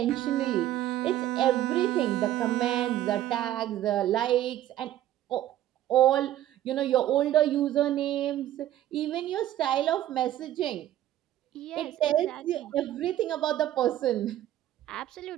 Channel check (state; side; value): quieter; left; 13.0 dB